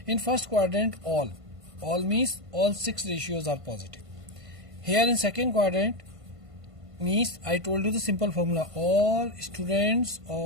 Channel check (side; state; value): left; late; 1.5 ms